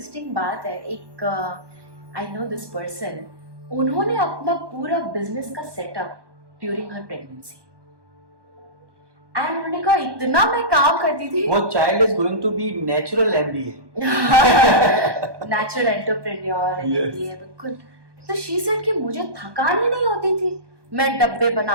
बात है, एक आई नो दिस पर्सन, उन्होंने अपना पूरा बिजनेस का setup during her pregnancy, and उन्होंने कहा इतना मैं काम करती थी। वो child is going to be natural MBA, natural entrepreneur, बिल्कुल। तो शी सेड कि मुझे थकान ही नहीं होती थी, मैं डब्बे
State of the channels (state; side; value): late; left; 1.2 ms